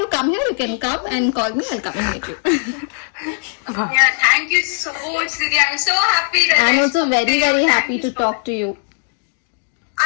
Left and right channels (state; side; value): silent; right; digital silence